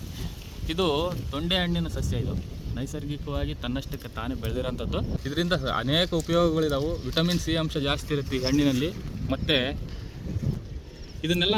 ಇದು ತೊಂಡೆ ಹಣ್ಣಿನ ಸಸ್ಯ. ಇದು ನೈಸರ್ಗಿಕವಾಗಿ ತನ್ನಷ್ಟಕ್ಕೆ ತಾನೇ ಬೆಳೆದಿರೋಂಥದ್ದು. ಇದರಿಂದ ಅನೇಕ ಉಪಯೋಗಗಳಿದಾವೆ. ವಿಟಮಿನ್ ಸಿ ಅಂಶ ಜಾಸ್ತಿ ಇರುತ್ತೆ ಈ ಹಣ್ಣಿನಲ್ಲಿ. ಮತ್ತು ಇದನ್ನೆಲ್ಲ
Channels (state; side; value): identical; both; correlation 1.00